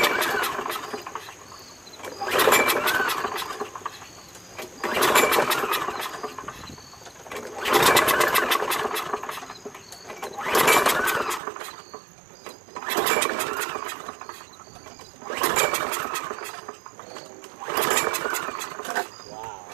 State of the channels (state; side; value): drops out; left; at 11.4 s